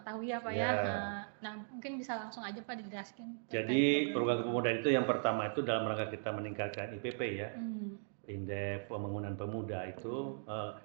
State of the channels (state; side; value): silent; left; digital silence